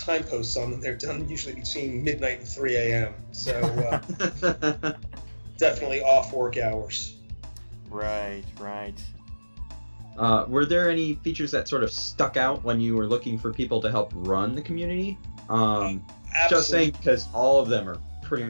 posts on them, they're done usually between midnight and 3 a.m. So definitely off work hours. Right. Were there any features that sort of stuck out when you were looking for people to help run the community? Just saying, because all of them are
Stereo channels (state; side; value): inverted; both; correlation -1.00